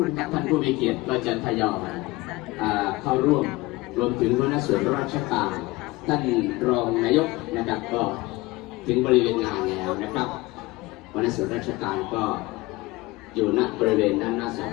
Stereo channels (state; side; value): quieter; right; 21.0 dB